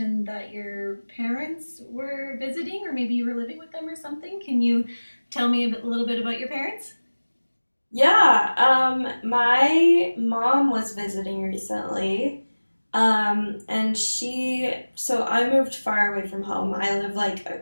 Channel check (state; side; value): inverted; both; correlation -1.00